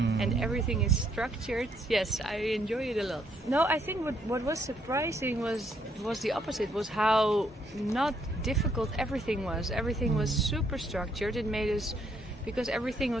everything is structured. Yes, I enjoy it a lot. No, I think what was surprising was the opposite. Was how not difficult everything was. Everything was super structured. It made us, because everything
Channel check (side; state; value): both; normal; correlation 0.71